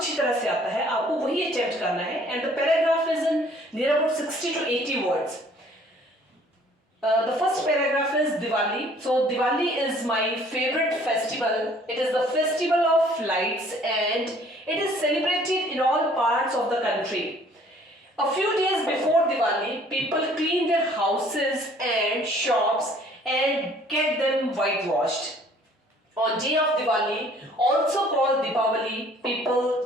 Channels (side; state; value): both; normal; correlation 0.57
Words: तरह से आता है, आपको वही अटेम्प्ट करना है. And the paragraph is in near about 60 to 80 words. The first paragraph is Diwali. So Diwali is my favorite festival. It is the festival of lights and it is celebrated in all parts of the country. A few days before Diwali, people clean their houses and shops and get them whitewashed. On day of Diwali, also called Deepavali,